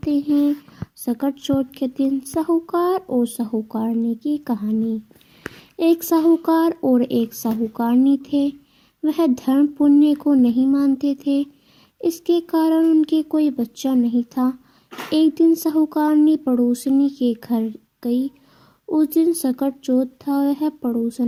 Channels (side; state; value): both; identical; correlation 1.00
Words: हैं सकट चौथ के दिन साहूकार और साहूकारनी की कहानी। एक साहूकार और एक साहूकारनी थे। वह धर्म पुण्य को नहीं मानते थे। इसके कारण उनके कोई बच्चा नहीं था। एक दिन साहूकारनी पड़ोसनी के घर गई। उस दिन सकट चौथ था। वह